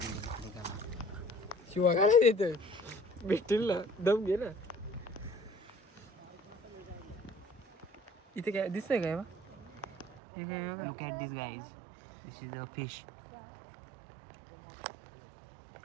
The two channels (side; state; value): left; drops out; at 10.2 s